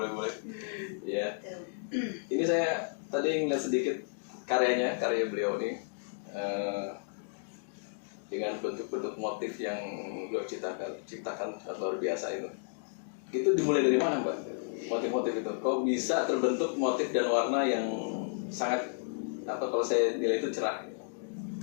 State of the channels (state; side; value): silent; right; digital silence